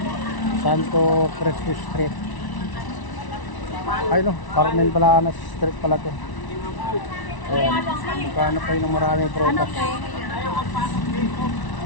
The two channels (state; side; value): late; right; 1.0 ms